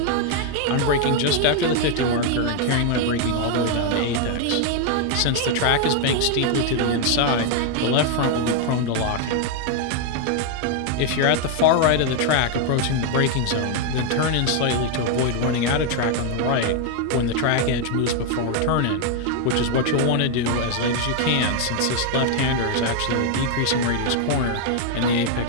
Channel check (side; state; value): both; different; correlation 0.00